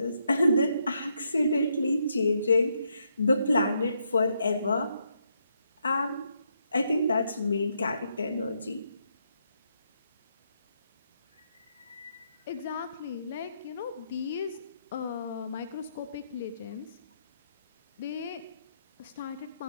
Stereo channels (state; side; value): inverted; both; correlation -0.78